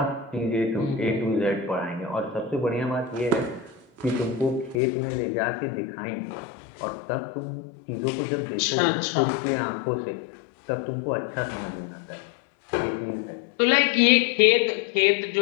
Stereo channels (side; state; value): right; drops out; at 4.8 s